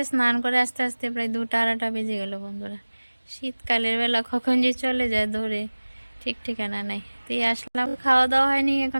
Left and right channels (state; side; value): inverted; both; correlation -1.00